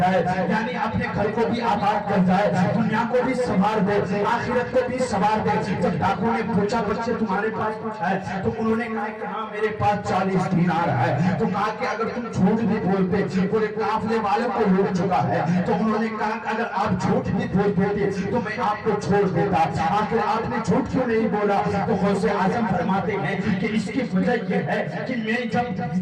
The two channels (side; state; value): both; identical; correlation 1.00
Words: یعنی اپنے گھر کو بھی آباد کر جائے, دنیا کو بھی سنوار دے, آخرت کو بھی سنوار دے. جب ڈاکو نے پوچھا بچے تمہارے پاس کچھ ہے, تو انہوں نے کہا کہ ہاں میرے پاس 40 دینار ہے. تو کہا کہ اگر تم جھوٹ بھی بولتے پورے قافلے والوں کو لوٹ چکا ہے, تو انہوں نے کہا کہ اگر آپ جھوٹ بھی بول دیتے تو میں آپ کو چھوڑ دیتا, آخر آپ نے جھوٹ کیوں نہیں بولا. تو غوث اعظم فرماتے ہیں کہ اس کی وجہ یہ ہے کہ میں جب